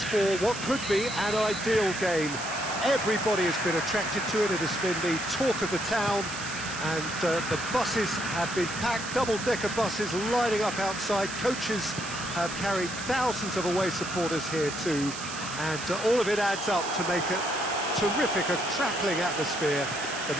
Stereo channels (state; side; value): noise; right; hiss, 9 dB below the sound